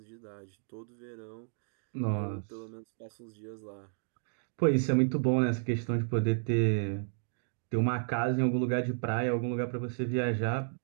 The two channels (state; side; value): silent; left; digital silence